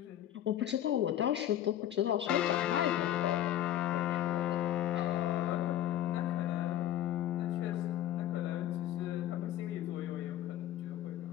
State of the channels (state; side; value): quieter; right; 12.0 dB